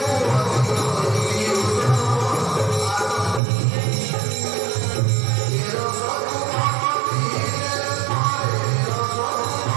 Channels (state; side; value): drops out; left; at 3.4 s